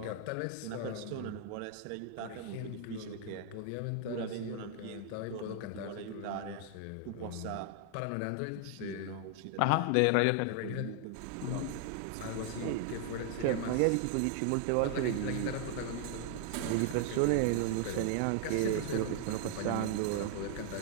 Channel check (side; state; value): both; different; correlation 0.00